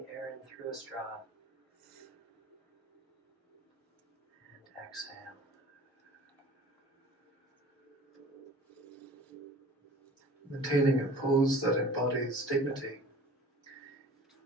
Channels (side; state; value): both; normal; correlation 0.45